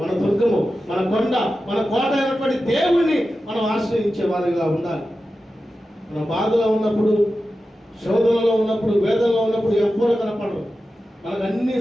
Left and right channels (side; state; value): both; normal; correlation 0.92